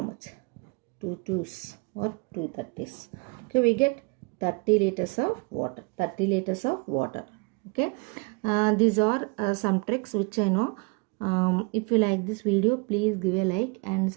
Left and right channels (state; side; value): quieter; left; 30.4 dB